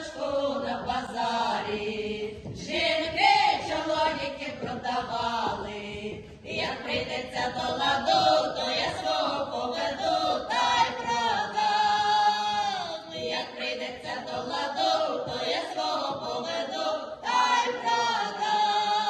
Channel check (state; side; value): identical; both; correlation 1.00